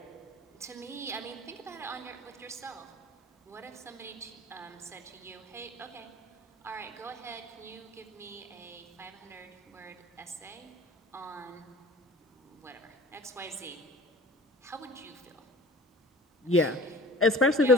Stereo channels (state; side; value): normal; both; correlation 0.44